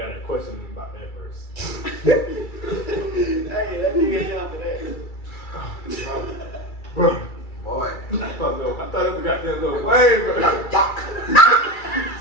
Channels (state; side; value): late; right; 2.3 ms